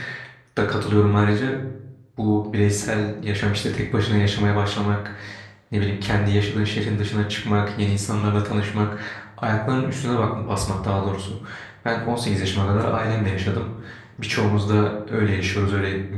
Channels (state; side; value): identical; both; correlation 1.00